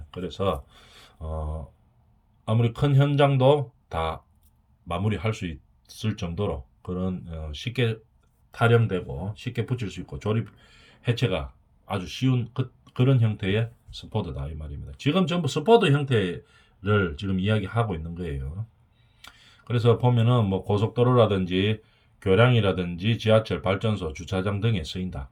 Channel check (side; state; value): both; identical; correlation 1.00